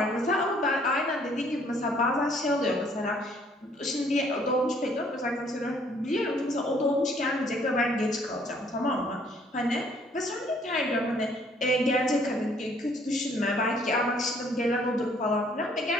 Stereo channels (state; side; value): normal; both; correlation 0.62